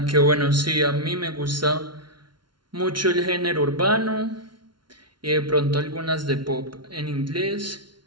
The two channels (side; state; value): left; late; 0.72 ms